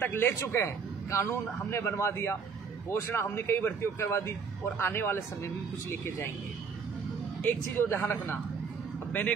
ले चुके हैं। कानून हमने बनवा दिया, घोषणा हमने कई भर्तियों करवा दी, और आने वाले समय में कुछ लेके जाएंगे। एक चीज़ और ध्यान रखना, अब मैंने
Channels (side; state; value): left; quieter; 5.7 dB